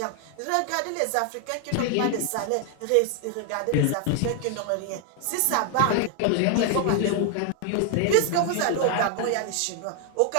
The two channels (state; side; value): different; both; correlation 0.00